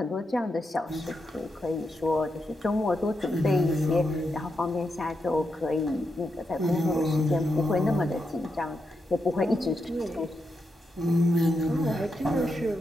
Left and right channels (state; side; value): normal; both; correlation 0.85